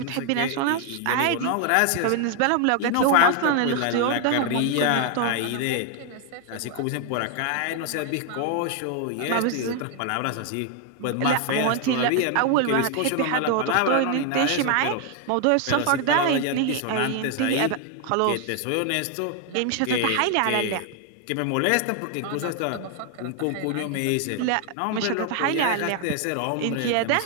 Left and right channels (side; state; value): both; different; correlation 0.00